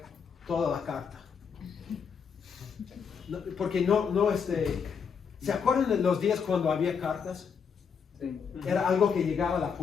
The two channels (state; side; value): quieter; right; 6.5 dB